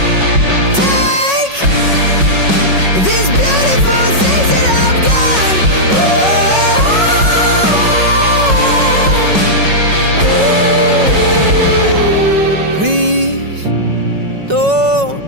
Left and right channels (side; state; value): left; late; 5.4 ms